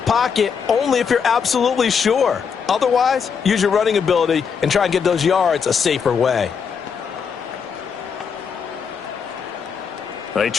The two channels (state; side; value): quieter; right; 6.5 dB